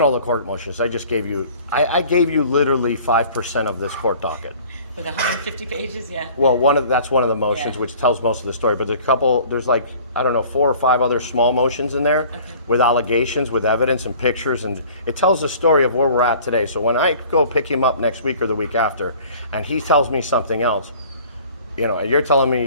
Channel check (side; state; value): both; inverted; correlation -0.49